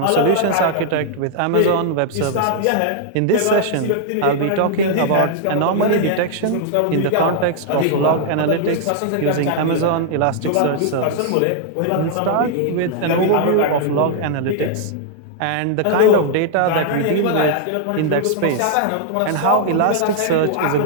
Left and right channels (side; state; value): both; different; correlation -0.01